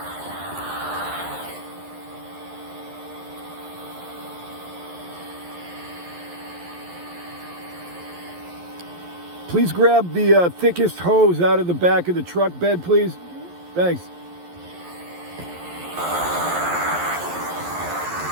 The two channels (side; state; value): left; late; 11 ms